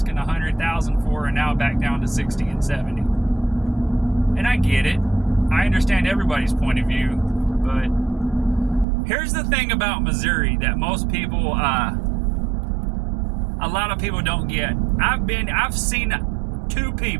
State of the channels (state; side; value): drops out; left; at 8.8 s